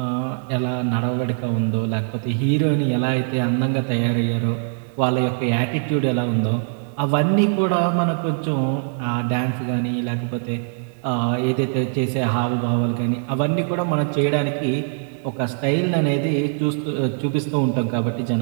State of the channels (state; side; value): silent; left; 64 dB below the other